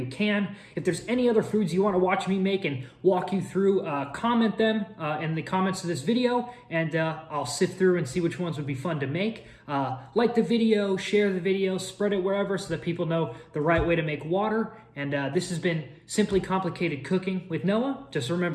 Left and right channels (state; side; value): identical; both; correlation 1.00